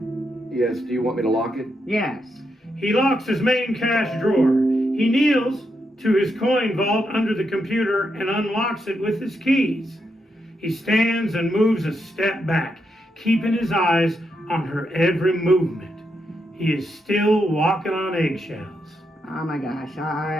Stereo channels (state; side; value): normal; both; correlation 0.82